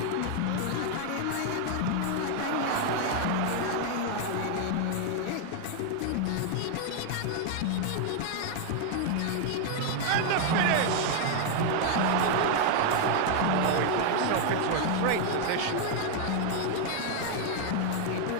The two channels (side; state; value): both; different; correlation 0.00